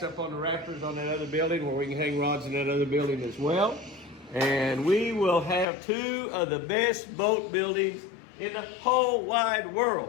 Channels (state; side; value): drops out; right; at 5.7 s